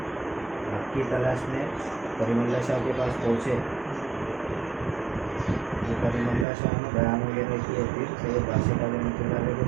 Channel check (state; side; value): drops out; left; at 6.5 s